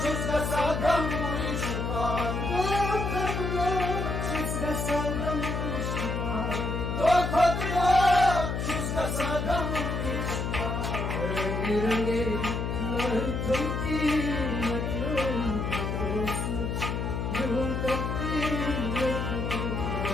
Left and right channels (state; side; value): noise; left; hum, 2 dB below the sound